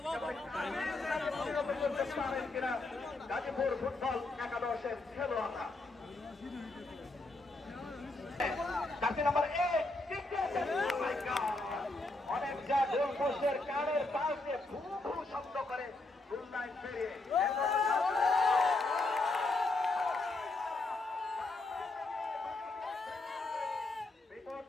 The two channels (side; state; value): right; quieter; 3.1 dB